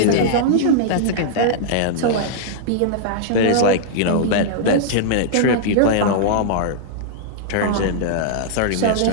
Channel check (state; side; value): different; both; correlation -0.01